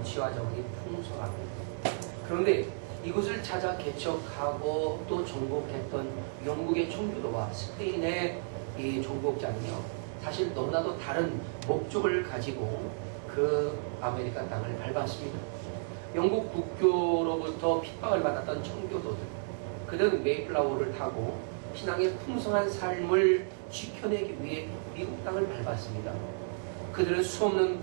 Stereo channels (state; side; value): silent; left; digital silence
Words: 지하자원이 풍성합니다. 그런데 이곳을 찾아 개척하고 또 정복했던 영국의 청교도와 스페인의 이 정복자는요, 사실 너무나도 다른 목적을 가지고 그 아메리카 땅을 밟았습니다. 영국 국교로부터 핍박을 받았던 청교도들, 그들은 메이플라워를 타고 신앙의 풍성한 삶을 지켜내기 위해 미국 땅을 밟았습니다. 그들은 수없는